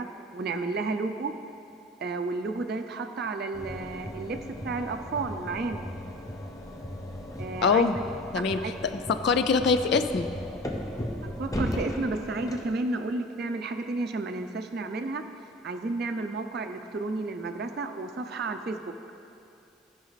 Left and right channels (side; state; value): both; normal; correlation 0.39